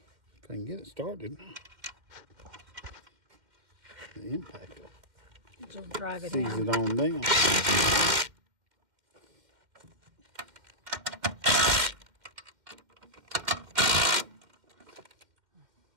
I can get it started, the impact will Just drive it seize in. it on down.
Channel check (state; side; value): late; left; 2.1 ms